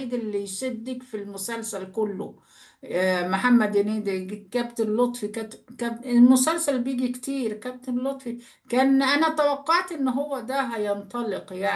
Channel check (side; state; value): both; identical; correlation 1.00